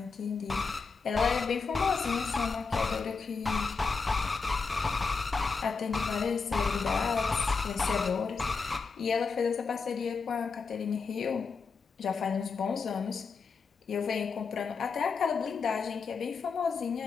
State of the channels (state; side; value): quieter; right; 4.9 dB